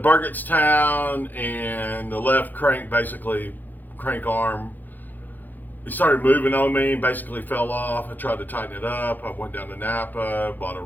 and the left crank, basically crank arm, it started moving on me and basically fell off. I tried to tighten it up. I went down to Napa, bought a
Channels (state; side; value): late; right; 0.086 ms